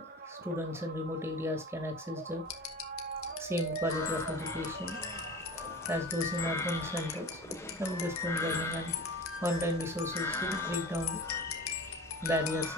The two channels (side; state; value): both; normal; correlation 0.36